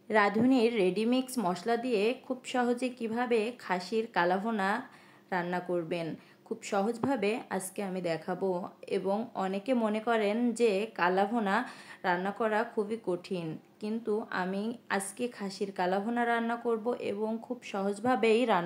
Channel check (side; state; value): both; identical; correlation 1.00